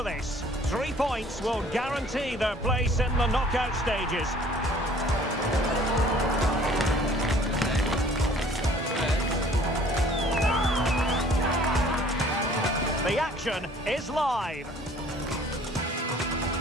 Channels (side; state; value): both; normal; correlation 0.54